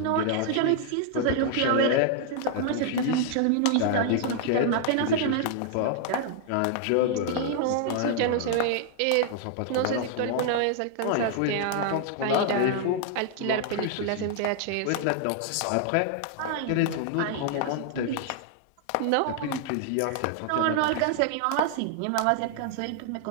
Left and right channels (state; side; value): different; both; correlation 0.00